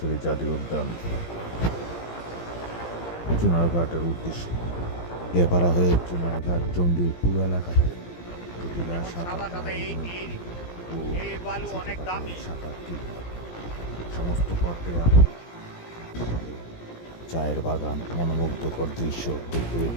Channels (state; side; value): late; right; 17 ms